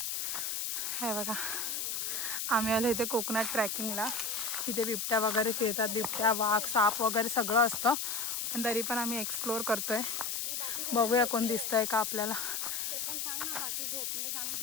हे बघा आम्ही आलो इथे कोकणात ट्रॅकिंगला. इथे बिबट्या वगैरे फिरतात, बिबट्या वाघ साप वगैरे सगळं असतं. पण तरी पण आम्ही एक्सप्लोअर करतोय. बघूया कोण दिसतंय का आपल्याला.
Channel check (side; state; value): left; noise; hiss, 2 dB below the sound